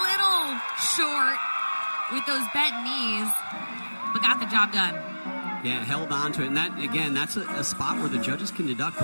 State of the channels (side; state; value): both; inverted; correlation -1.00